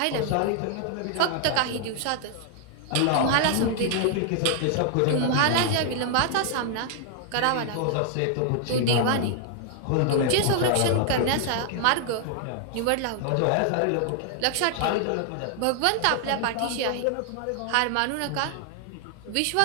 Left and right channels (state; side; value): different; both; correlation 0.00